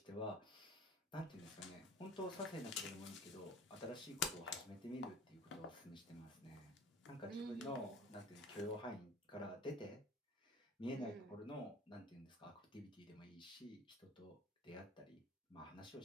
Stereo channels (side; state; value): both; normal; correlation 0.43